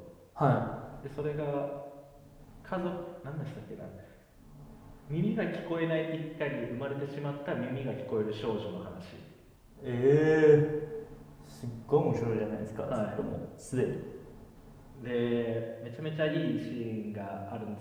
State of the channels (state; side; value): identical; both; correlation 1.00